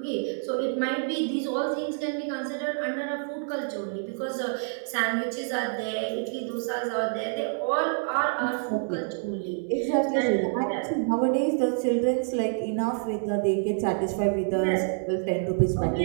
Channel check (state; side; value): silent; left; 60 dB below the other